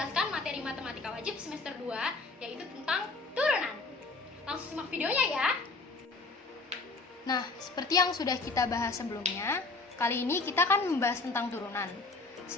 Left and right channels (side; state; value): right; quieter; 3.7 dB